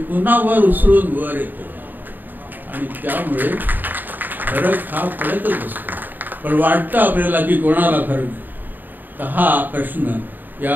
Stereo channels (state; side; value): late; left; 0.089 ms